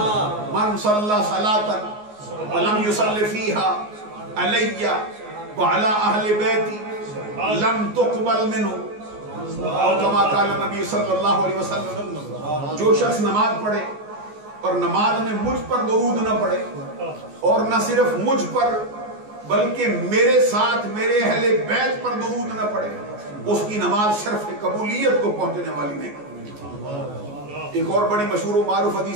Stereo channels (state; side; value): late; left; 14 ms